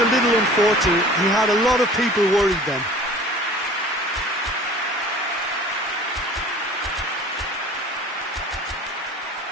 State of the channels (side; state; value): both; normal; correlation 0.45